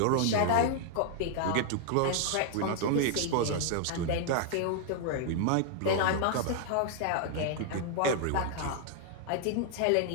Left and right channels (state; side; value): different; both; correlation 0.00